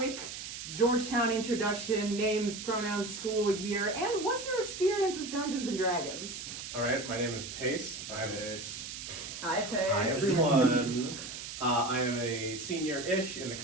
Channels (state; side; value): noise; right; hiss, 9 dB below the sound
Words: Georgetown introduction, names, pronouns, school, year, and what's your experience with Dungeons and Dragons? Alright, my name is Pace. Hi, Pace. Hi, everyone. I am a senior-ish in the